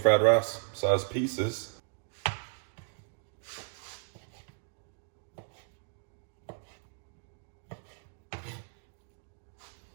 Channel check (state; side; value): silent; left; digital silence